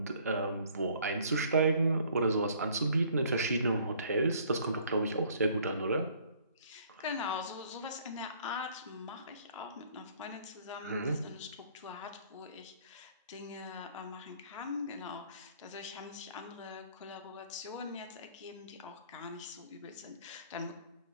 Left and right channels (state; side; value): inverted; both; correlation -0.58